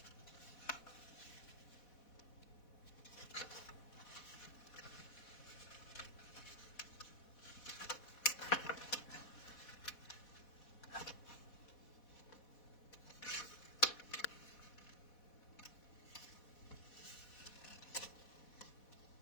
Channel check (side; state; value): right; late; 4.1 ms